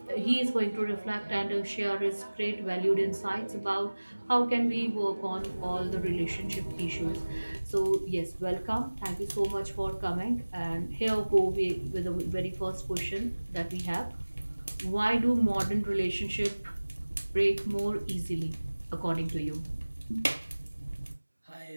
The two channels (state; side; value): inverted; both; correlation -1.00